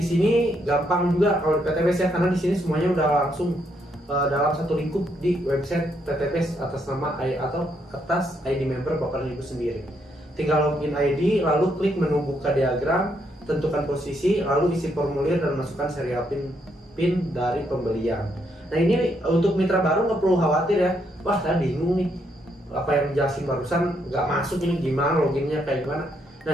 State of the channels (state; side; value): normal; both; correlation 0.75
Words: sini gampang juga kalau di PTBest ya, karena di sini semuanya udah langsung dalam satu lingkup di website PTBest atas nama atau atas ID member Bapak dan Ibu sendiri. Tinggal login ID, lalu klik menu buka diagram, tentukan posisi, lalu isi formulir dan masukkan serial PIN dari pembelian. Nah, ini untuk mitra baru nggak perlu khawatir ya. Wah, saya bingung nih, apa yang dijelasin barusan nggak masuk, ini gimana loginnya kayak gimana. Nah,